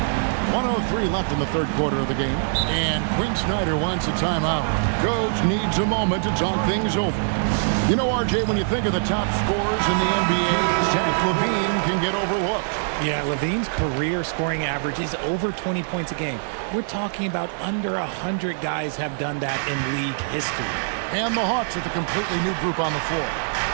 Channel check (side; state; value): left; silent; digital silence